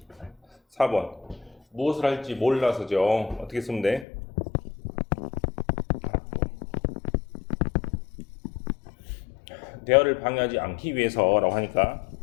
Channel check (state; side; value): drops out; right; at 4.0 s